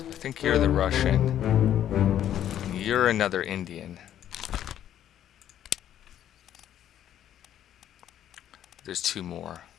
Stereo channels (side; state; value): right; quieter; 10.9 dB